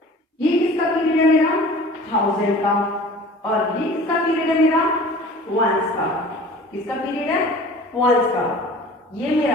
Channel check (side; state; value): both; normal; correlation 0.43